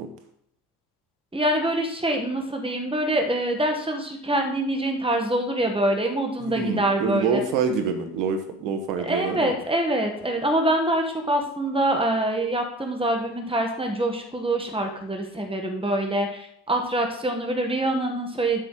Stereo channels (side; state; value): both; normal; correlation 0.43